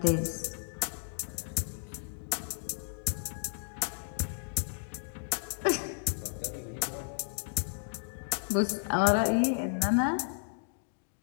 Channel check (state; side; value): silent; right; digital silence